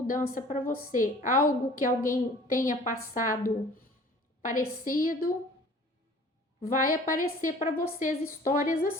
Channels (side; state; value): both; normal; correlation 0.49